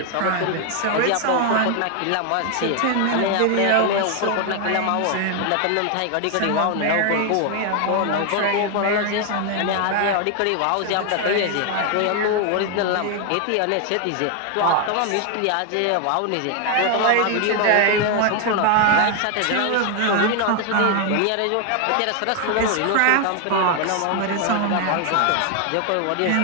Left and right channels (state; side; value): different; both; correlation 0.01